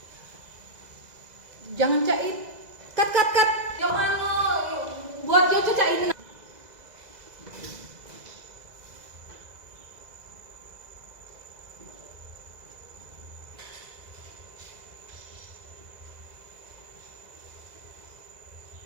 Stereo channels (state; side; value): late; left; 2.0 ms